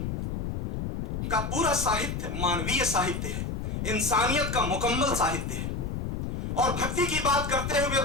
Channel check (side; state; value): left; noise; rumble, 3 dB below the sound